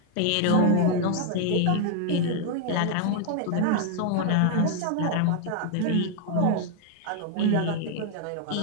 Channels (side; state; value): both; different; correlation 0.00